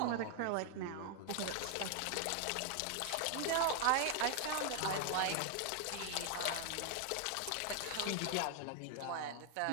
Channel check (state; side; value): different; both; correlation 0.00